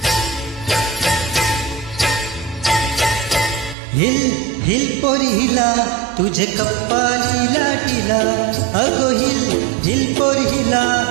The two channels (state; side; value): drops out; left; at 3.8 s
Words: हिल हिल पोरी हिला तुझे कप्पाली लाटीला. अगो हिल हिल पोरी हिला